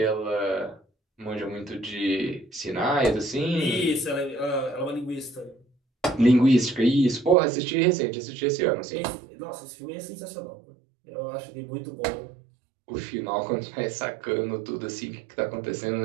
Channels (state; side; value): drops out; left; at 7.4 s